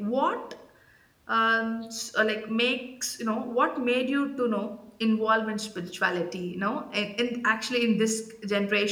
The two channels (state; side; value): identical; both; correlation 1.00